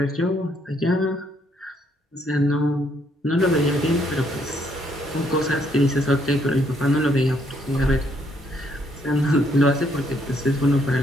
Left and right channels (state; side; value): normal; both; correlation 0.70